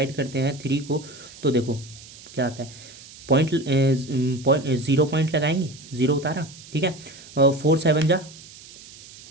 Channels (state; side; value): noise; right; hiss, 19 dB below the sound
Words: करते हैं 3 को, तो देखो क्या आता है, पॉइंट 0 पॉइंट लगाएंगे, 0 उतारा, ठीक है। 4 7 जा